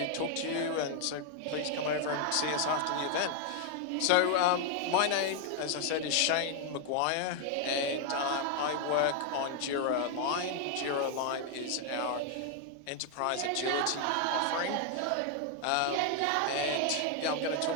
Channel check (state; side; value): different; both; correlation 0.00